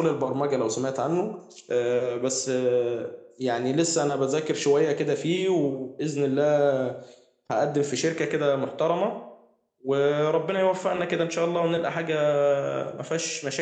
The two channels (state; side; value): identical; both; correlation 1.00